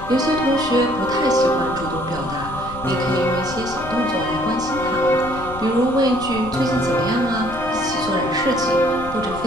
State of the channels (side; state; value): left; noise; rumble, 13 dB below the sound